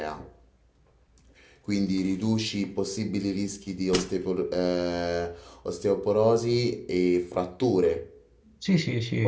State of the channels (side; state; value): both; identical; correlation 1.00